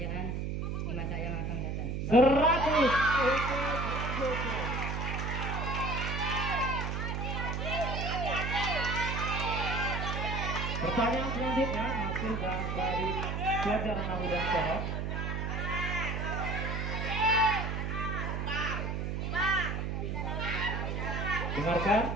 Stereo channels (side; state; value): right; noise; hum, 2 dB below the sound